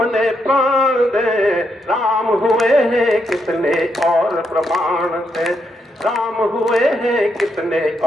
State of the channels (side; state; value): both; normal; correlation 0.79